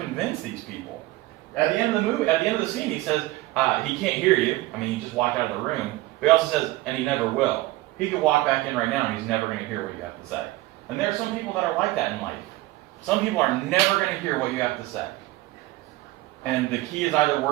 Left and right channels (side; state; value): left; quieter; 18.3 dB